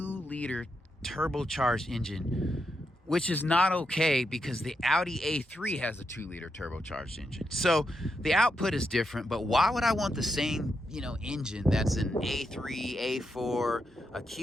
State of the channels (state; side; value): normal; both; correlation 0.84